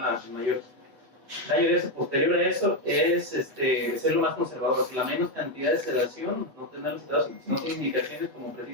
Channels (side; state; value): left; late; 8.5 ms